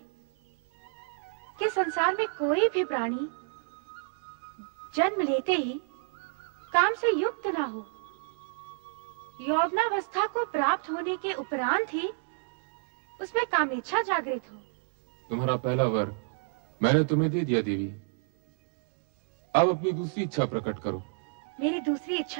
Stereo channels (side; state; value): left; silent; digital silence